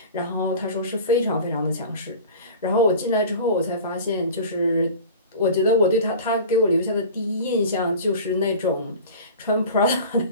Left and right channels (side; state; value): both; inverted; correlation -0.37